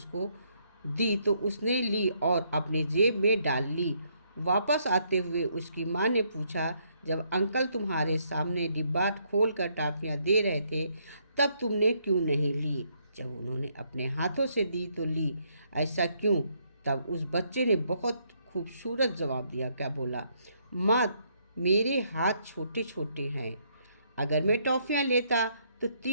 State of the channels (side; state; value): both; inverted; correlation -0.72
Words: दी, तो उसने ली और अपने जेब में डाल ली। वापस आते हुए उसकी माँ ने पूछा, जब अंकल तुम्हारे सामने डिब्बा खोल कर टॉफ़ियाँ दे रहे थे, तब तुमने क्यों नहीं ली? जब उन्होंने अपने हाथों से दी तो ली, ऐसा क्यों? तब उस बच्चे ने बहुत खूबसूरत जवाब दिया। क्या बोला? माँ, मेरे हाथ छोटे छोटे हैं, अगर मैं टॉफ़ियाँ लेता तो